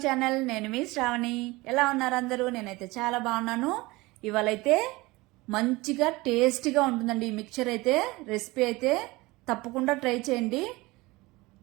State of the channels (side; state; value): left; quieter; 21.8 dB